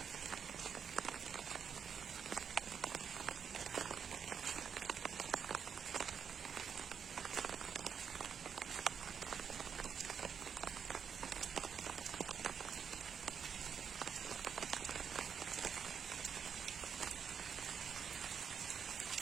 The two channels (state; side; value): quieter; left; 7.1 dB